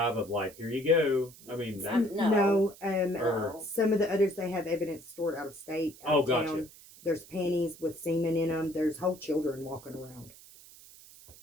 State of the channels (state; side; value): noise; right; hiss, 21 dB below the sound